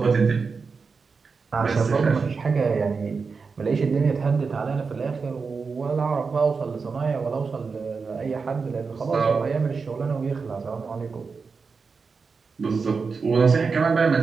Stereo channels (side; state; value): left; quieter; 4.9 dB